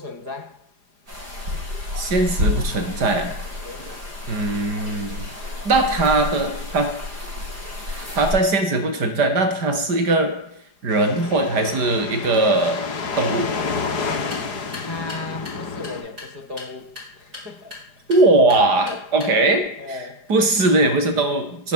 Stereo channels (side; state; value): left; late; 4.9 ms